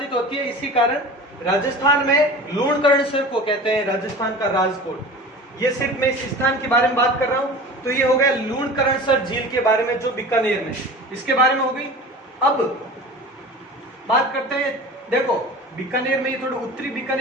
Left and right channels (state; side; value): normal; both; correlation 0.37